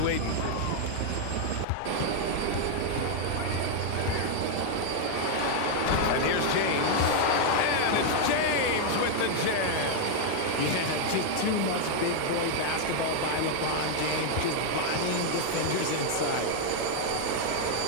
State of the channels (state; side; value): different; both; correlation 0.00